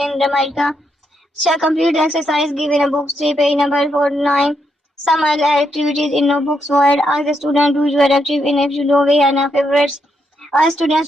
Jamaica. Shall complete the exercise given a book 3, page number 49. Some other activities in notebooks word. Ask the student who you are active in if you know we have favorites. Ask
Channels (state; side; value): normal; both; correlation 0.79